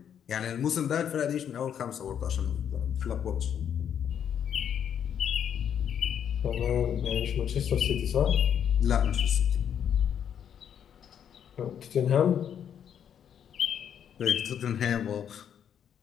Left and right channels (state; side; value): quieter; right; 8.8 dB